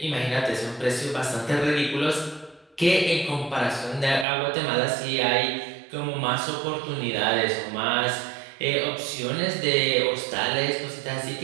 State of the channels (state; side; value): drops out; left; at 4.2 s